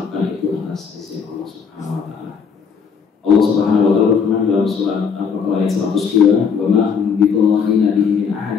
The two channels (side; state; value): right; quieter; 6.2 dB